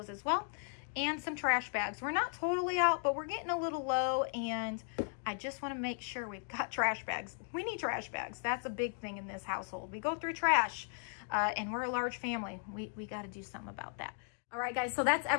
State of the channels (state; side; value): silent; right; 53 dB below the other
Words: as well. And some trash bags. We're not totally out, but we're getting a little low, and I just want to make sure we've got trash bags. We need trash bags. That's a big thing in this household. We go through trash, and we're a large family. We got to do something about that. All right, guys, so that's